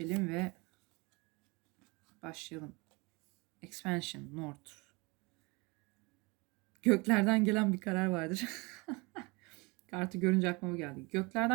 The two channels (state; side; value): quieter; left; 26.8 dB